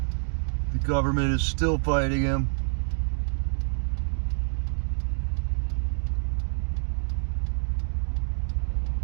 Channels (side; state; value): left; silent; digital silence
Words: The government is still fighting him.